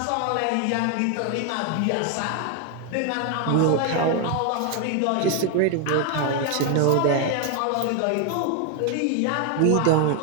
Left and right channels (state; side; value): different; both; correlation 0.01